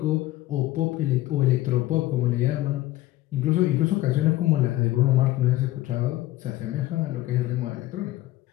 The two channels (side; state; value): right; quieter; 16.5 dB